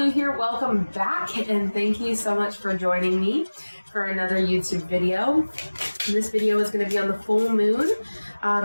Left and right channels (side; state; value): both; inverted; correlation -1.00